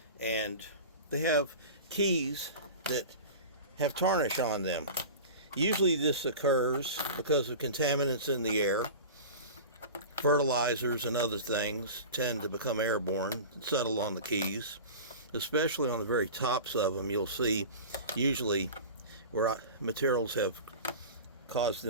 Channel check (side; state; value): both; inverted; correlation -0.34